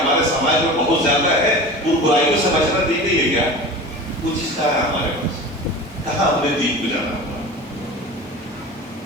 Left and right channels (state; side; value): normal; both; correlation 0.35